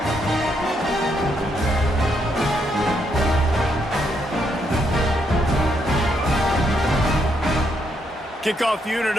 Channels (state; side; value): normal; both; correlation 0.76